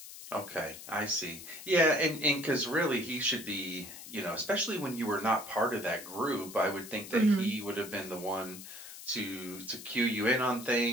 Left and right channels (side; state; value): left; noise; hiss, 13 dB below the sound